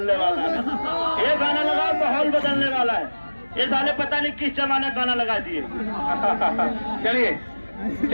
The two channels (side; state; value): both; inverted; correlation -1.00